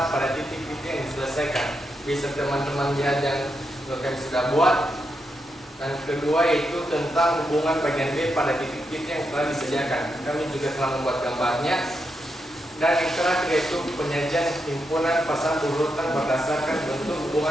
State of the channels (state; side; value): normal; both; correlation 0.84